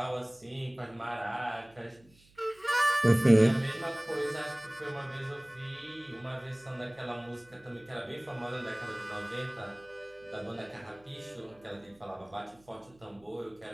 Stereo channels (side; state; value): right; noise; hum, 29 dB below the sound